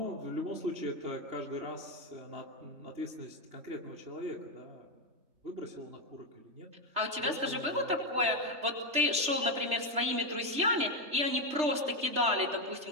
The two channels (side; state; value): left; late; 3.3 ms